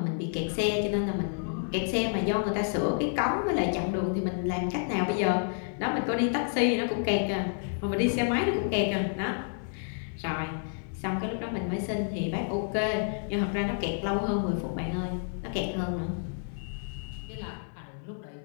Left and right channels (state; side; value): silent; right; 58 dB below the other